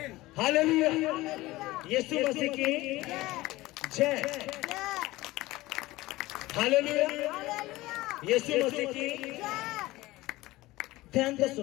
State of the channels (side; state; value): right; quieter; 18.7 dB